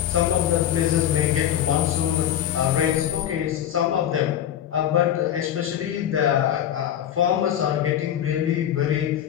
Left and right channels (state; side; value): quieter; right; 10.5 dB